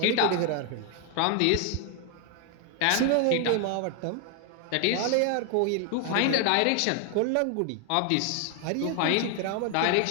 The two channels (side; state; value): both; different; correlation 0.00